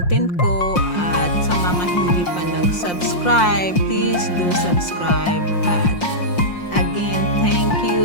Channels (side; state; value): right; late; 5.7 ms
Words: ko, at sa mga hindi pa nag-subscribe, please do subscribe. At again, thank